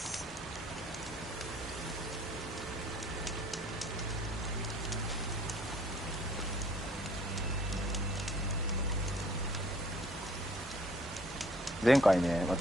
前回ね、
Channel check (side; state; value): both; normal; correlation 0.57